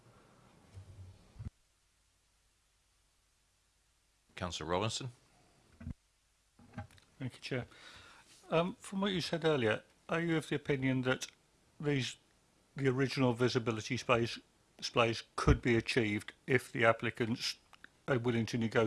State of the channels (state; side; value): identical; both; correlation 1.00